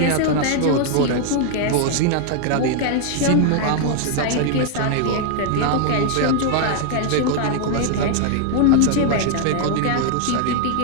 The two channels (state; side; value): different; both; correlation 0.00